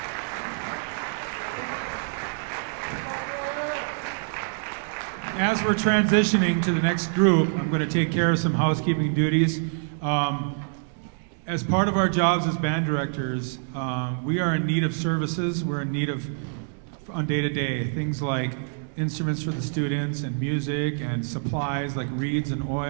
As we're transitioning to the next group, I'm going to take care of some housekeeping duties. As part of our jobs as band directors, we are in need of services. We're in need of, on day-to-day, things like instruments for the students and music and supplies like reeds and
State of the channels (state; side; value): silent; left; digital silence